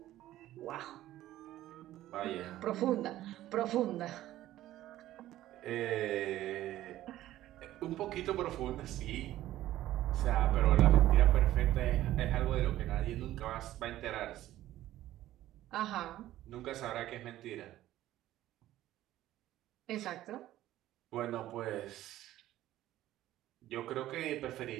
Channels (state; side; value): quieter; left; 14.3 dB